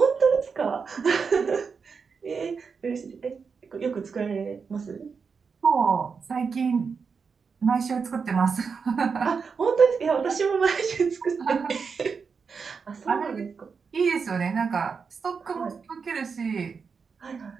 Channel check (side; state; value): left; quieter; 5.5 dB